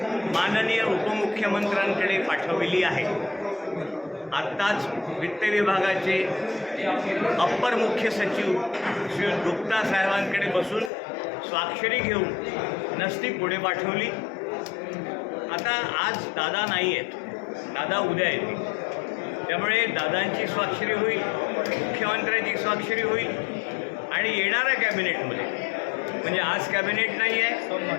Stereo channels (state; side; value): drops out; right; at 10.9 s